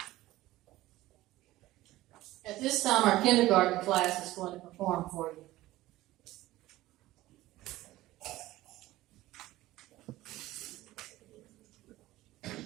At this time, our kindergarten class is going to perform for you.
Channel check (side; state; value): left; quieter; 16.8 dB